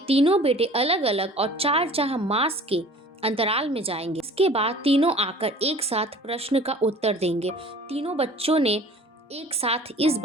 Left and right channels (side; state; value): both; normal; correlation 0.46